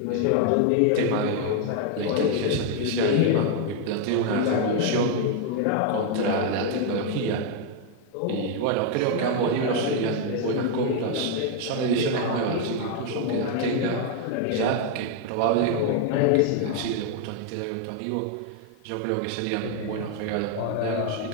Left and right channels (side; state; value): both; different; correlation 0.00